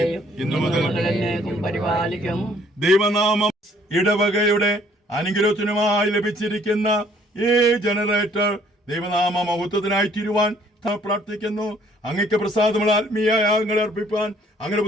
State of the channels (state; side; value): normal; both; correlation 0.62